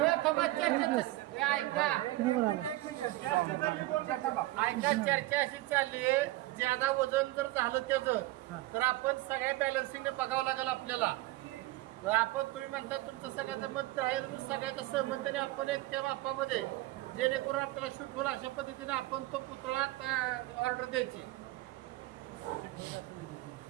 ऐका चर्चा अशी चालली आहे ज्यादा वजन जर झालं त्याचं तर आपण सगळ्या बॅलन्सिंग बघावं लागेल आपल्याला आपण तुम्ही म्हणता तुमचं सगळ्याचं मत आहे सगळ्याच्या सहमतीने आपण एक त्या मापामध्ये जेणेकरून आपल्याला शूट होईल अशा पद्धतीने आपण तो पुतळा ऑर्डर द्यायची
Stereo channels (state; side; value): quieter; left; 18.2 dB